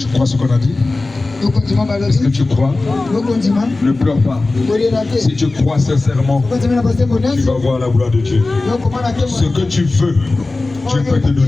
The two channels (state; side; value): quieter; right; 3.3 dB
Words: crois ce qu'on a dit? Est-ce que tu crois? Ne pleure pas. Si tu crois sincèrement, tu vas voir la gloire de Dieu. Ce que tu veux, Dieu peut te